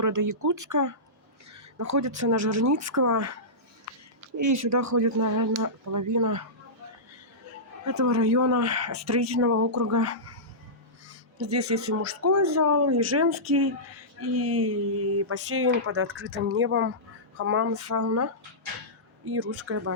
Якутска. Находится на Жирницкого. И сюда ходит, наверное, половина этого района строительного округа. Здесь есть и мужской зал, и женский, и бассейн под открытым небом, хамам, сауна и русская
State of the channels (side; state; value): both; normal; correlation -0.16